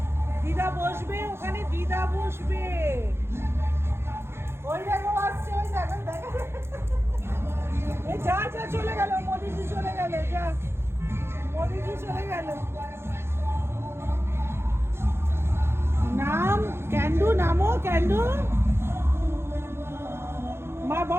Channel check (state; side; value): late; left; 0.12 ms